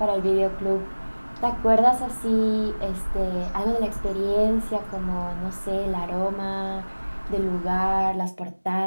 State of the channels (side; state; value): both; inverted; correlation -1.00